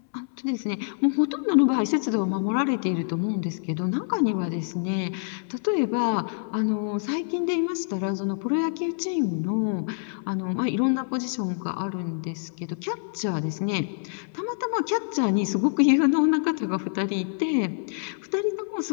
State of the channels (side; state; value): right; silent; 61 dB below the other